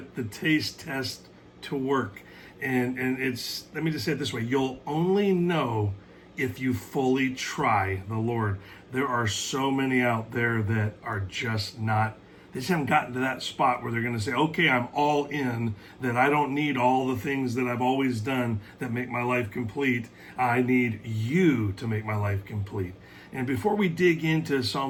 the taste test to work. And it's, let me just say it this way, you'll only know if you fully try the Lord. There are so many out there that are just not, they just haven't gotten to that spot where they're going to say, okay, I'm all in, that I don't need all the things that I've always done that make my life complete. I need you to make my life complete. And before we dig into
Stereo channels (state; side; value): identical; both; correlation 1.00